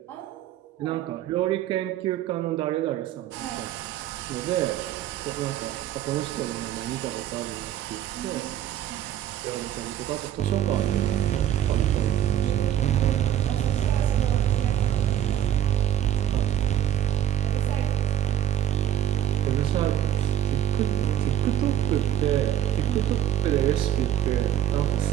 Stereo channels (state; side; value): quieter; left; 11.3 dB